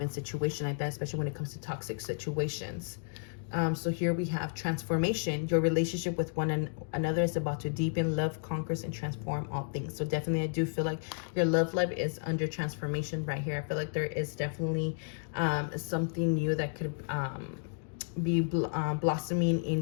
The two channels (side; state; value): right; silent; digital silence